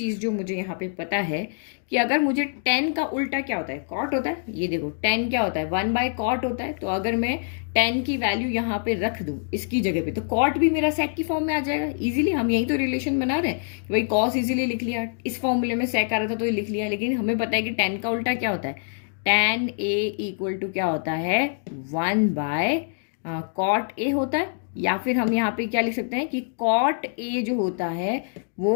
जो मुझे यहाँ पे पता है कि अगर मुझे tan का उल्टा क्या होता है, cot होता है। ये देखो tan क्या होता है, 1/cot होता है। तो अगर मैं tan की वैल्यू यहाँ पे रख दूं इसकी जगह पे, तो cot भी मेरा sec की फॉर्म में आ जाएगा इजीली। हम यही तो रिलेशन बना रहे हैं कि भाई cos इजीली लिख लिया, इस फॉर्मूले में sec आ रहा था तो ये लिख लिया। लेकिन हमें पता है कि tan का उल्टा क्या होता है, tan A इक्वल टू क्या होता है, 1/cot A होता है। या फिर हम यहाँ पे क्या लिख सकते हैं कि cot A जो होता है वो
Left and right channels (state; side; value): silent; right; digital silence